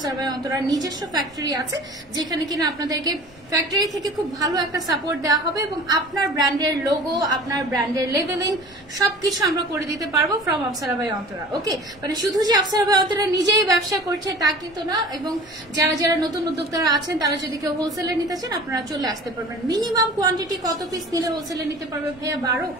ভাই অন্তরার নিজস্ব ফ্যাক্টরি আছে, যেখানে কিনা আপনাদেরকে ফ্যাক্টরি থেকে খুব ভালো একটা সাপোর্ট দেওয়া হবে এবং আপনার ব্র্যান্ডের লোগো, আপনার ব্র্যান্ডের লেভেলিং সবকিছু আমরা করে দিতে পারবো ফ্রম আফসারা ভাই অন্তরা। ওকে, মানে শুধু যে আফসারা ভাই অন্তরা নিজেই ব্যবসা করছে তা কিন্তু না। এবং যারা যারা নতুন উদ্যোক্তারা আছেন, তারা যদি কেউ হোলসেলে নিতে চান, আপনারা চলে আসতে পারবেন। মিনিমাম কোয়ান্টিটি কত পিস নিলে হোলসেলে নিতে পারবে ভাইয়া?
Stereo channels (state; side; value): noise; left; rumble, 26 dB below the sound